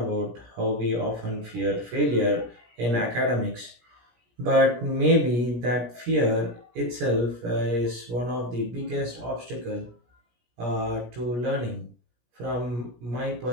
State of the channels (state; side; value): late; left; 17 ms